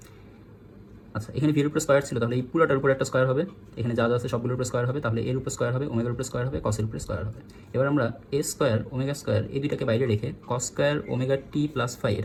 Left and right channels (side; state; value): both; identical; correlation 1.00